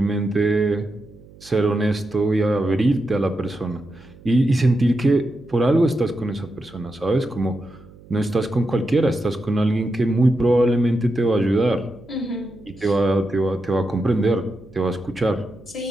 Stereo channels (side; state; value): right; noise; hum, 23 dB below the sound